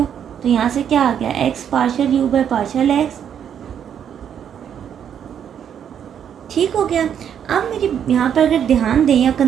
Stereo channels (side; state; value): left; quieter; 8.7 dB